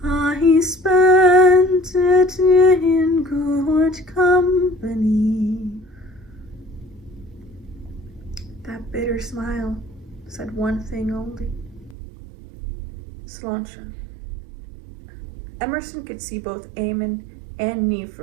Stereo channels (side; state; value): left; drops out; at 12.0 s